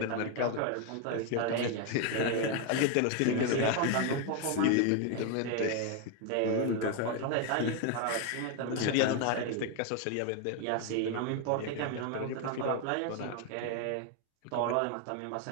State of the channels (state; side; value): different; both; correlation 0.01